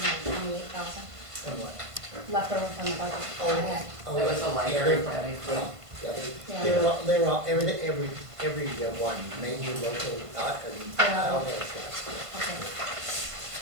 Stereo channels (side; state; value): left; late; 1.5 ms